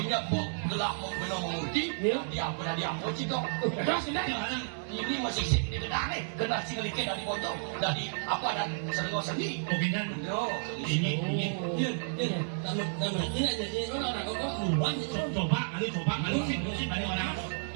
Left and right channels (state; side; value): silent; left; 57 dB below the other